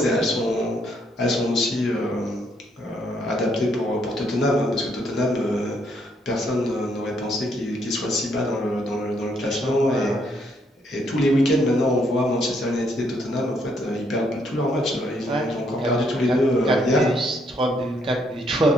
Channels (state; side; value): normal; both; correlation 0.72